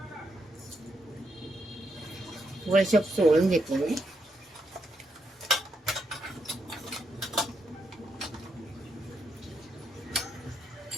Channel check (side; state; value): both; normal; correlation 0.80